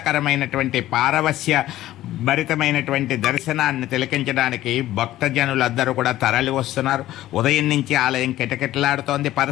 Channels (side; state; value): right; quieter; 14.5 dB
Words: పారవస్య భరితమైనటువంటి దర్శనాన్ని తిలకించడానికి భక్తజనులందరూ కూడా తరలి వస్తున్నారు. ఉదయం నుంచి ఆలయం కిటకిటలాడుతోంది.